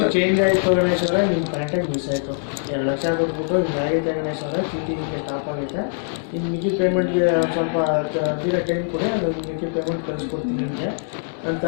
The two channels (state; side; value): silent; right; digital silence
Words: ಚೇಂಜ್ ಆಯಿತು ಗಣೇಶ್ ಅವರೇ. ನಿಮ್ಮ ಕಾಂಟ್ಯಾಕ್ಟ್ ಮಿಸ್ ಆಯಿತು. 2 ಲಕ್ಷ ಕೊಟ್ಬಿಟ್ಟು ಹಿಂಗಾಗೈತೆ ಗಣೇಶ್ ಅವರೇ, ಚೀಟಿ ಹಿಂಗೆ ಸ್ಟಾಪ್ ಆಗೈತೆ. ಇನ್ನು ಮಿಕ್ಕಿ ಪೇಮೆಂಟ್ಗೆ ಸ್ವಲ್ಪ ತೀರ ಟೈಮ್ ಕೊಡಿ, ಅದು ಮಿಕ್ಕಿ ಪೇಮೆಂಟ್ ಕಳಿಸ್ಕೊಡ್ತೀನಿ ನಿಮಗೆ ಅಂತ